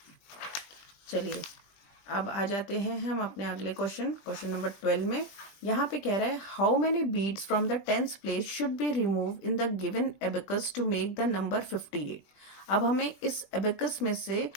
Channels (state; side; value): late; right; 20 ms